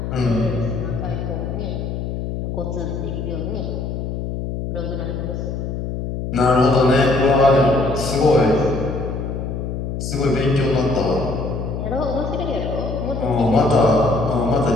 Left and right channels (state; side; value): noise; left; hum, 4 dB below the sound